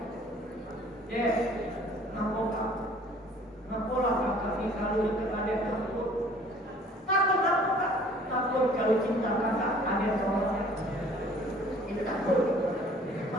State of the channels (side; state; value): both; normal; correlation 0.53